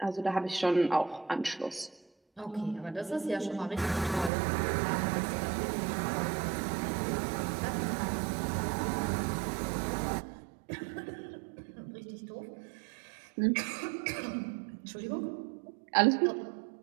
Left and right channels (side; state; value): left; drops out; at 4.3 s